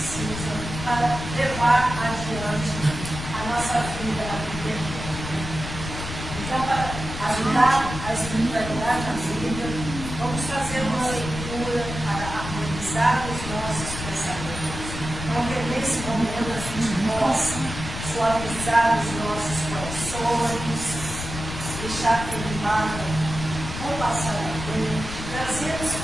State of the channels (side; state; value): left; noise; rumble, 8 dB below the sound